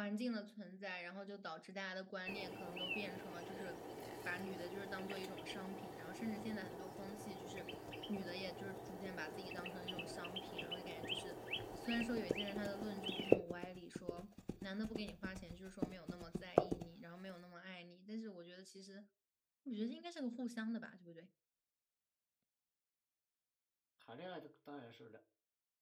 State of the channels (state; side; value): identical; both; correlation 1.00